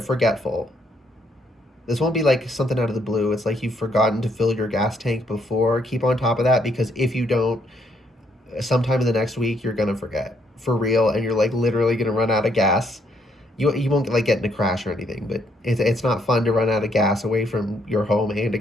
forgetful. This won't be like something out of the blue. It's like you've forgotten to fill your gas tank before. Keep on top of that, because if you don't, sometime in the next week, you're going to forget. For real, and you're like literally going to run out of gas. You won't like get in a crash or anything, but it's not fun to run out of gas away from your home and a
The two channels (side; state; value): both; normal; correlation 0.71